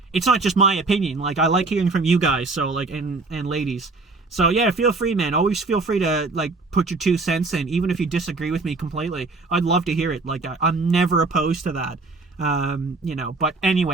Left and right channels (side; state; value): left; quieter; 3.7 dB